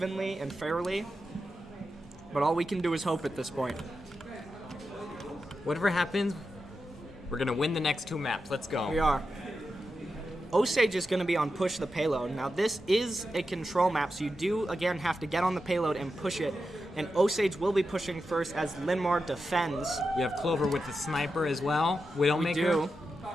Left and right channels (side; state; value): both; normal; correlation 0.89